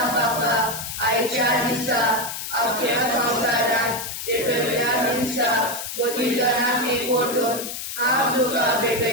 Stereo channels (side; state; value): left; noise; hiss, 7 dB below the sound